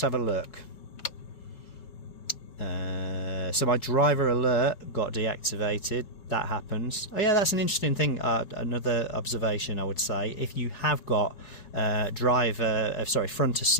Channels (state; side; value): late; right; 5.2 ms